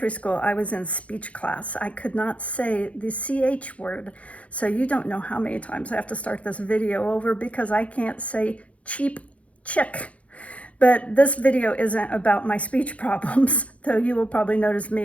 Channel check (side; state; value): right; late; 0.064 ms